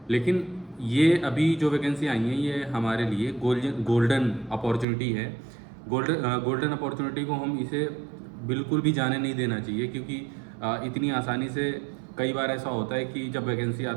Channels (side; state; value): left; drops out; at 4.9 s